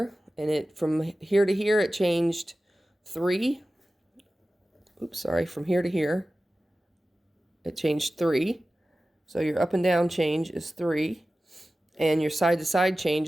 and it from here to here it changed 3. Oops, sorry. From here to here it changed 3. So your up and down change is 3, and your side to side change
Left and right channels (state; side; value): normal; both; correlation 0.95